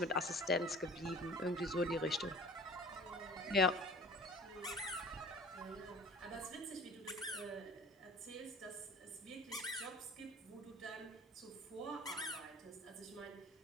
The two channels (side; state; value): both; normal; correlation 0.44